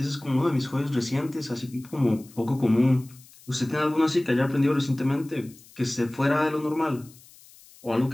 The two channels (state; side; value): noise; left; hiss, 24 dB below the sound